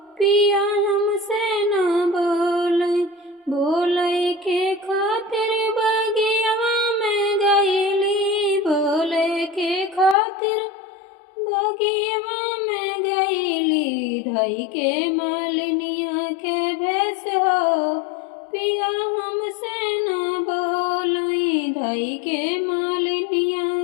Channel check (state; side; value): drops out; right; at 10.2 s